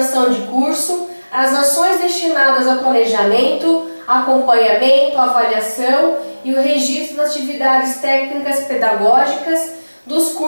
de curso as ações destinadas ao planejamento, acompanhamento, avaliação e o registro das atividades técnicas pedagógicas dos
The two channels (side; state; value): both; inverted; correlation -1.00